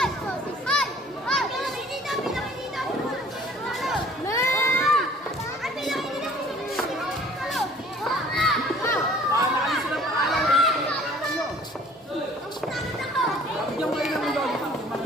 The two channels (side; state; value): both; normal; correlation 0.52